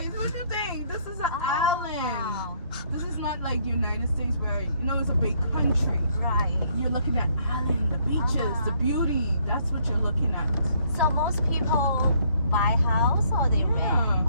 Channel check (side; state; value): both; inverted; correlation -0.67